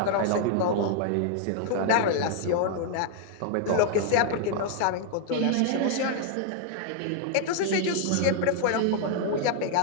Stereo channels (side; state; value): both; different; correlation 0.00